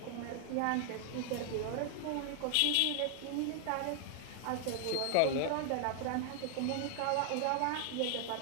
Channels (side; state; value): both; different; correlation 0.00